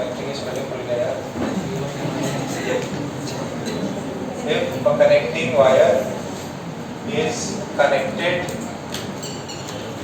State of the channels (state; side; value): identical; both; correlation 1.00